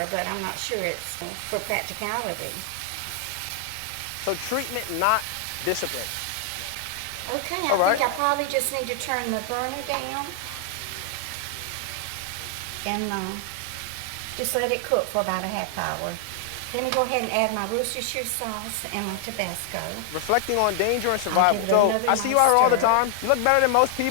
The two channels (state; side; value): different; both; correlation 0.00